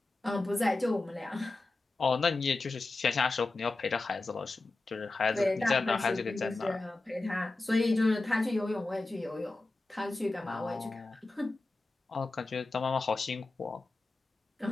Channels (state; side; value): quieter; right; 3.2 dB